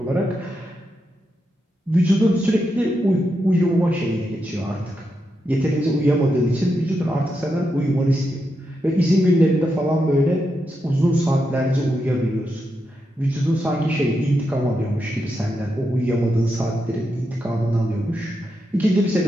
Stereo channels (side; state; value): both; normal; correlation 0.85